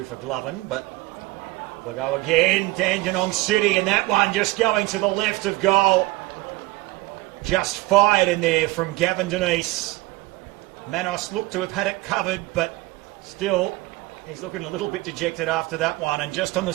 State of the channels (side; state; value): left; quieter; 20.1 dB